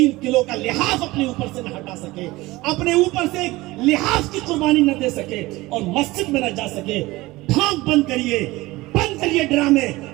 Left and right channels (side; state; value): left; quieter; 19.9 dB